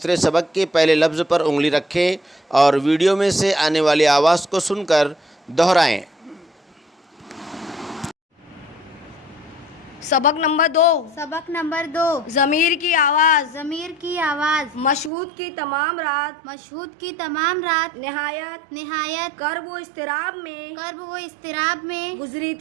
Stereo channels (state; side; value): drops out; left; at 15.1 s